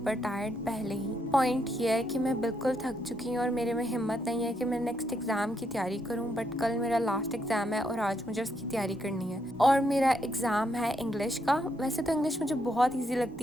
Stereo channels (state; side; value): normal; both; correlation 0.77